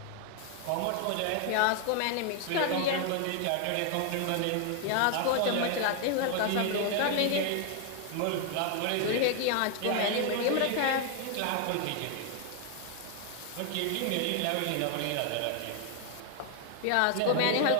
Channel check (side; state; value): both; different; correlation 0.00